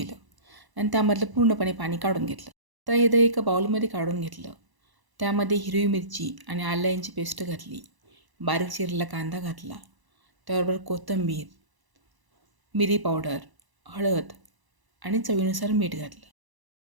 आणि त्यामधलं पूर्णपणे पाणी काढून घेतलं. तर हे दही एका बाउलमध्ये काढून घेतलं. त्यामध्ये हिरवी मिरची आणि आलं यांची पेस्ट घातली. बारीक चिरलेला कांदा घातला. त्याबरोबर कोथिंबीर, मिरी पावडर, हळद आणि चवीनुसार मीठ घातलं.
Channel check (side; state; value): left; late; 1.0 ms